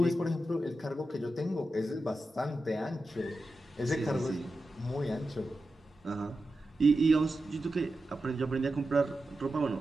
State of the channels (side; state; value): both; normal; correlation 0.91